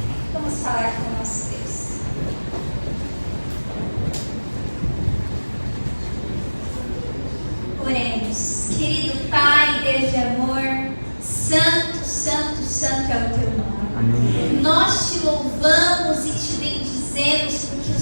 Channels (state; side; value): inverted; both; correlation -1.00